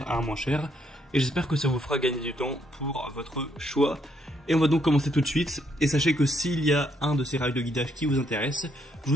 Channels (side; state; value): both; normal; correlation 0.73